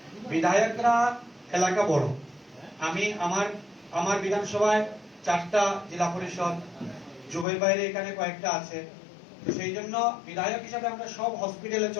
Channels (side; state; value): right; drops out; at 7.5 s